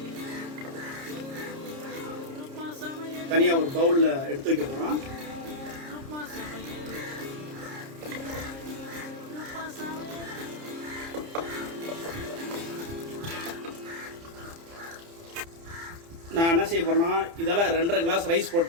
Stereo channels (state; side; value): late; left; 30 ms